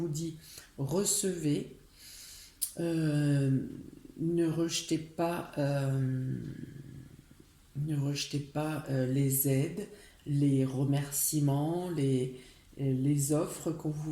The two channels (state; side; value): identical; both; correlation 1.00